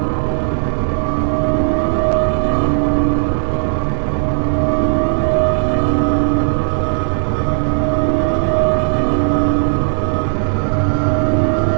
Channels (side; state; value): left; silent; digital silence